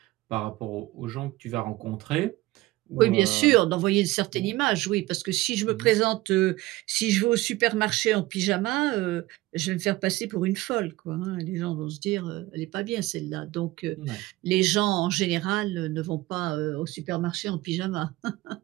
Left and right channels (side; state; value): left; quieter; 18.6 dB